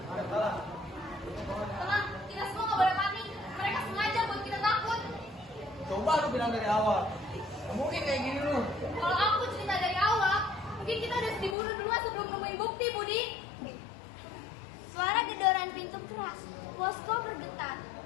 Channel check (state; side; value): drops out; right; at 11.6 s